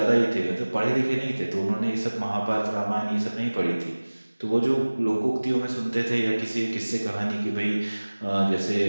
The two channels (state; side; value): inverted; both; correlation -1.00